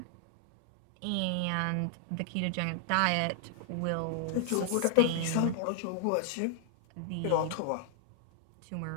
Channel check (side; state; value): both; different; correlation -0.01